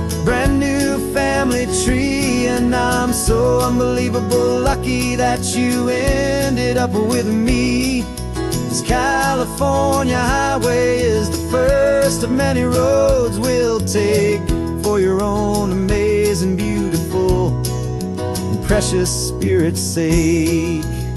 brand new family tree. And I'm so unbelievable lucky that you ended up with me. This California highway is the first of many roads we'll take for your own amazing, beautiful, and precious spirit's sake.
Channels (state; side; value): identical; both; correlation 1.00